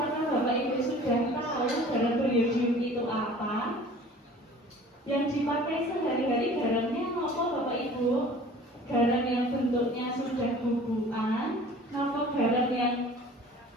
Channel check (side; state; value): both; normal; correlation 0.46